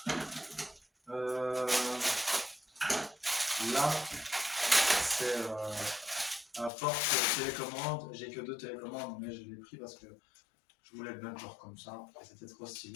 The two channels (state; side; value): drops out; right; at 6.7 s